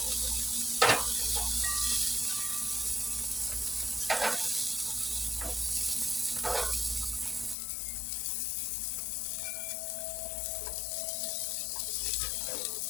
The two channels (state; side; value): drops out; right; at 7.6 s